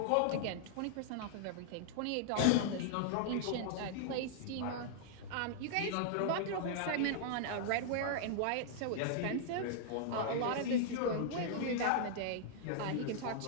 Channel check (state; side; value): different; both; correlation -0.01